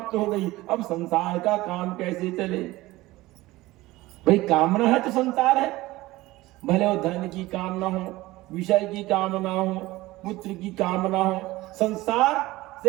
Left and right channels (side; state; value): left; quieter; 18.7 dB